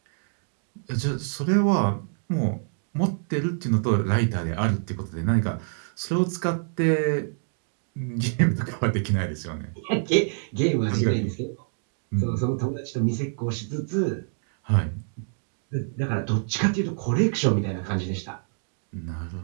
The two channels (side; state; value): left; silent; 61 dB below the other